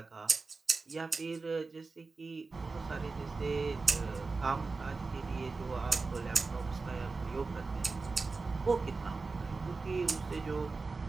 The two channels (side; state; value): left; quieter; 4.0 dB